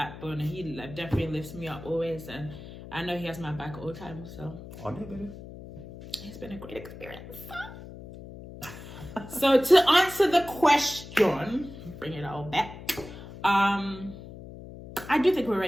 and he like, definitely lifts me up always. And I know he has my back all the time. So it's been a great experience. So to answer the question, bring it all back. I do think we're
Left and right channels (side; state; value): left; noise; hum, 14 dB below the sound